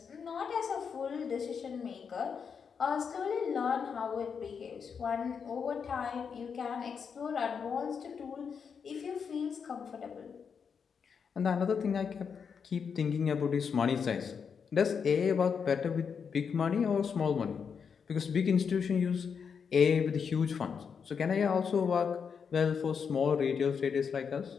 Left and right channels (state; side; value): quieter; right; 6.4 dB